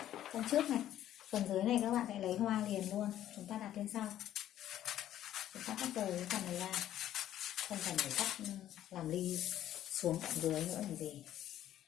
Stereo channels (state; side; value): quieter; right; 12.1 dB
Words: Phần trước này. Phần dưới này các bạn sẽ lấy hoa liền luôn. Chúng ta đặt lên sau. Chúng ta cắt rời cái phần này ra. Không cần phải cắt làm ly xuống tận dưới nữa làm gì.